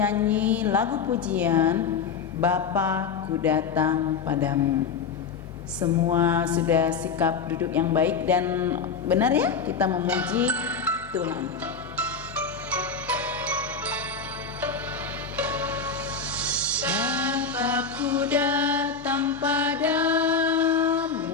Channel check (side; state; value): right; quieter; 5.4 dB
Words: lagu pujian Bapa ku datang padamu. Semua sudah sikap duduk yang baik dan benar ya, kita memuji Tuhan. Bapa ku datang padamu,